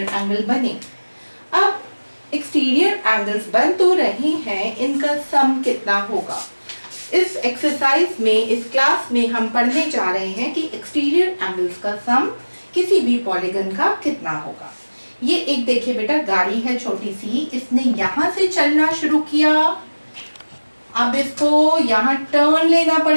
एंगल बने। अब एक्सटीरियर एंगल्स बन तो रहे हैं, इनका सम कितना होगा? इस एक्सरसाइज में, इस क्लास में हम पढ़ने जा रहे हैं कि एक्सटीरियर एंगल्स का सम किसी भी पॉलीगन का कितना होगा। ये एक देखिए बेटा, गाड़ी है छोटी सी, इसने यहाँ से चलना शुरू किया। अब इसको यहाँ टर्न लेना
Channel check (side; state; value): both; inverted; correlation -1.00